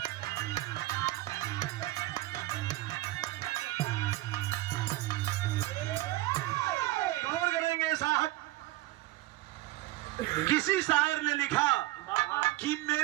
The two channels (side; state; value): left; quieter; 17.7 dB